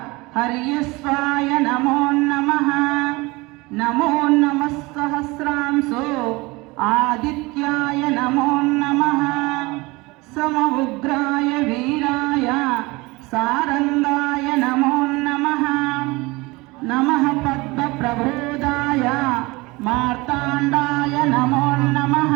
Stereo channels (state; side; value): quieter; left; 23.4 dB